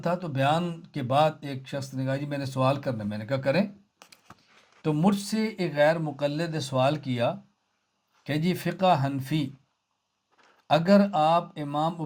تھا، تو بیان کے بعد ایک شخص نے کہا جی میں نے سوال کرنا ہے، میں نے کہا کریں۔ تو مجھ سے ایک غیر مقلد نے سوال کیا کہ جی فقہ حنفی اگر امام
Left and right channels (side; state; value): both; identical; correlation 1.00